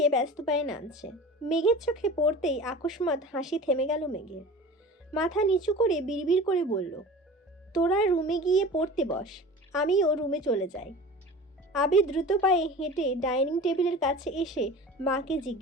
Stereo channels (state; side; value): normal; both; correlation 0.37